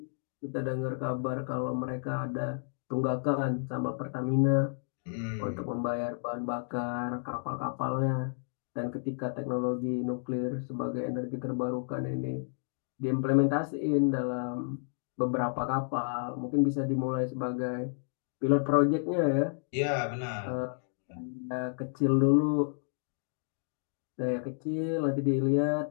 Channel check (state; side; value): silent; right; digital silence